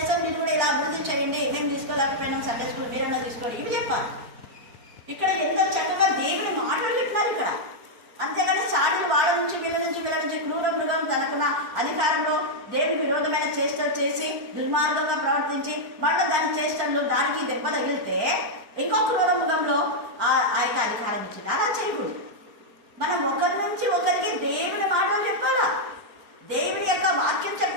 మీరు కూడా ఇలా అభివృద్ధి చేయండి, మేము తీసుకోలేకపోయినాం సండే స్కూల్, మీరన్నా తీసుకోండి, ఇవి చెప్పాలి. ఇక్కడ ఎంత చక్కగా దేవుని మాటలు చెప్పినారు ఇక్కడ. అంతేగాని సాటిలు వాళ్ళ నుంచి వీళ్ళ నుంచి క్రూర మృగం తనకున్న అధికారంలో దేవుని విరోధమైన చేష్టలు చేసి దుర్మార్గంగా ప్రవర్తించి మళ్ళీ దాని చేష్టలు దానికి దెబ్బ తగిలితే ఇంకో క్రూర మృగంలో ఆ యొక్క అధికారం ఇచ్చింది. అలా చేయకూడదు. మనం ఒకరి నుంచి ఒకరికి దేవుని మాటలు చెప్పాలా, దేవుని యొక్క వాక్యం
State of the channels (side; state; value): left; late; 4.5 ms